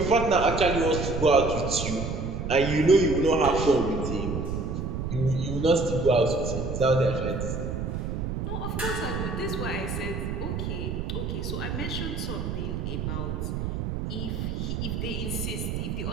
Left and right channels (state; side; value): noise; right; rumble, 3 dB below the sound